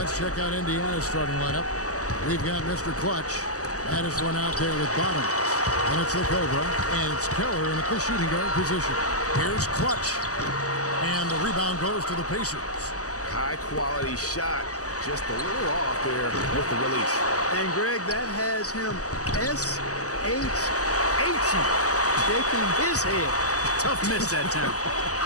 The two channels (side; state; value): right; late; 0.66 ms